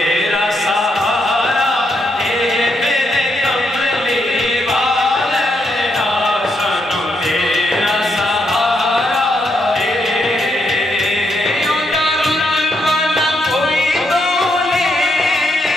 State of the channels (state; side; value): normal; both; correlation 0.78